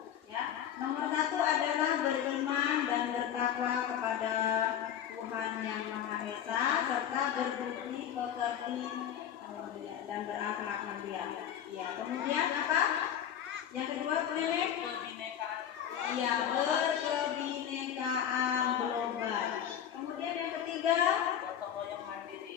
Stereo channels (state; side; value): quieter; right; 9.6 dB